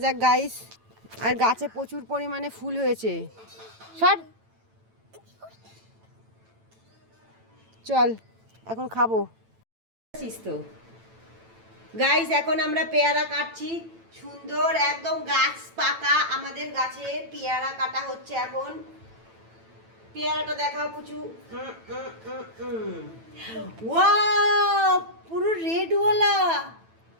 যাক গাইস। আর গাছে প্রচুর পরিমাণে ফুল হয়েছে। সর চল এখন খাবো। তো গাইস এখন আমরা পেয়ারা কাটছি সুন্দর একদম গাছ পাকা আমাদের গাছে পেয়ারা কাটা হচ্ছে এখন। পেয়ারাটা দেখাও পুচু। ওয়াও পুরো রেডওয়ালা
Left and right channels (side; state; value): left; late; 9.0 ms